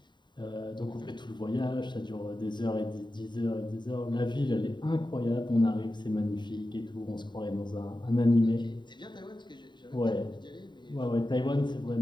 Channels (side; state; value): right; late; 0.22 ms